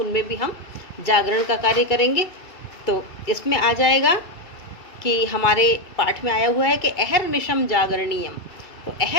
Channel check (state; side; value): late; right; 2.6 ms